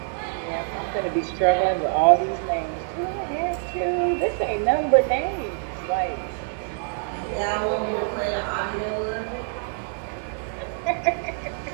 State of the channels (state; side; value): silent; left; 62 dB below the other